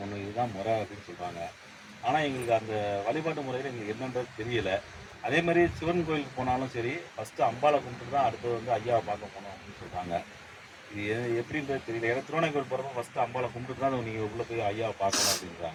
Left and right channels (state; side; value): identical; both; correlation 1.00